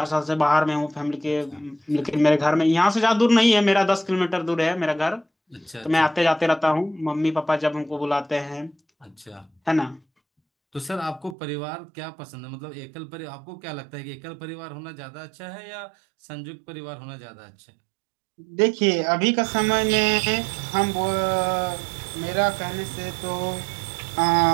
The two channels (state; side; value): drops out; left; at 11.4 s